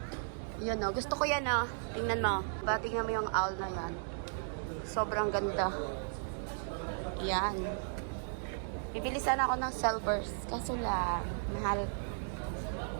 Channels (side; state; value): left; silent; digital silence